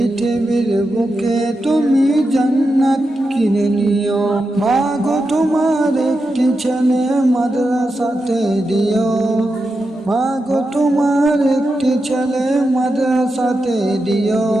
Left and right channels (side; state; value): both; normal; correlation 0.88